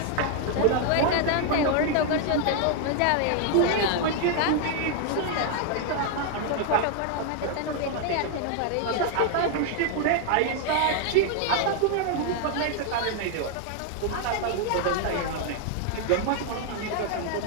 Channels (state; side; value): different; both; correlation 0.00